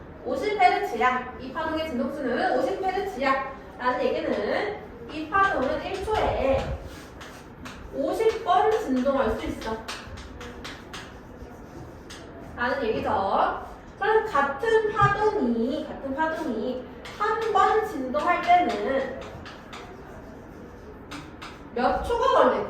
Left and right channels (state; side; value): identical; both; correlation 1.00